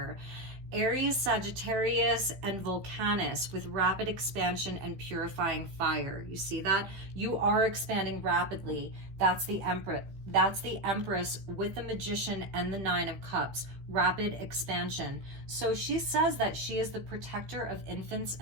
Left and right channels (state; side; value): late; left; 15 ms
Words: Aries, Sagittarius, and Volcanus with rapid expansion and purifying fire. You see that? You are expanding rapidly. That's the Empress. That's the Empress with the Magician and the 9 of Cups. Rapid expansion. So she says that she is the protector of infants